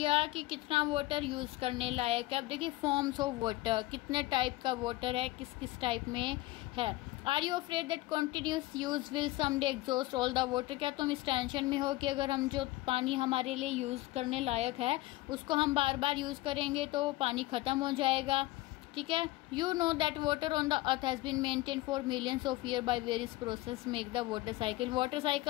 कि कितना वाटर यूज़ करने लायक है। अब देखिए फॉर्म्स ऑफ वाटर, कितने टाइप का वाटर है, किस किस टाइप में है। Are you afraid that continuous use will someday exhaust all the water? क्या तुम इस टेंशन में हो कि अगर हम जो पानी हमारे लिए यूज़ करने लायक है उसको हम बार बार यूज़ करेंगे तो पानी ख़त्म हो जाएगा। ठीक है। You know that water on the earth has been maintain for millions of year by various process make the water cycle. Water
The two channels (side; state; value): right; quieter; 18.8 dB